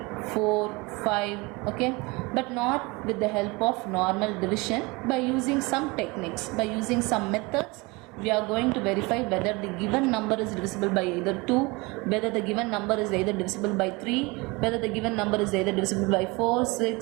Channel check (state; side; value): quieter; left; 25.3 dB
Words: 4, 5, okay, but not with the help of normal division. By using some techniques, by using some methods, we are going to verify whether the given number is divisible by either 2, whether the given number is either divisible by 3, whether the given number is either divisible by 4,